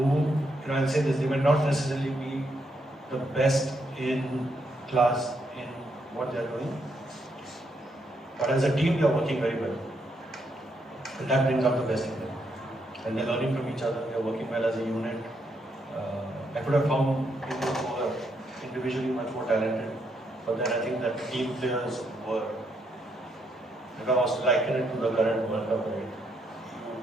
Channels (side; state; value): both; normal; correlation 0.77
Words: I'll say this, they may not necessarily be the best in class in what they're doing, but as a team, they're working very well. And that brings out the best in them. And they're learning from each other, they're working well as a unit. I could have found people who are individually much more talented, but then I think that team players were, if I was to liken it to the current World Cup, right?